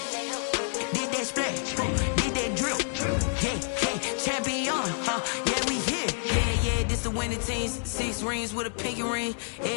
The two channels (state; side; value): silent; right; 59 dB below the other